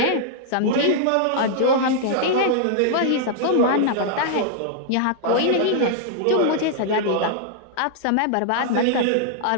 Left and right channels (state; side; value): different; both; correlation -0.01